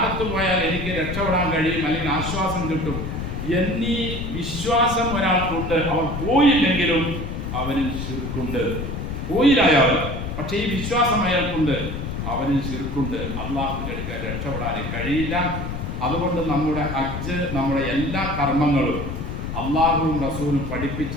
പോയാൽ എനിക്ക് രക്ഷപ്പെടാൻ കഴിയും, അല്ലെങ്കിൽ ആശ്വാസം കിട്ടും എന്നീ വിശ്വാസം ഒരാൾക്കുണ്ട്. അവൻ പോയില്ലെങ്കിലും അവനിൽ ശിർക്കുണ്ട്. പോയില്ലായാൽ പക്ഷേ ഈ വിശ്വാസം അയാൾക്കുണ്ട്, അവനിൽ ശിർക്കുണ്ട്. അള്ളാഹുവിൻ്റെ അടുക്കൽ രക്ഷപ്പെടാൻ കഴിയില്ല. അതുകൊണ്ട് നമ്മുടെ ഹജ്ജ്, നമ്മുടെ എല്ലാ കർമ്മങ്ങളും അള്ളാഹുവും റസൂലും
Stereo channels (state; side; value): noise; left; rumble, 5 dB below the sound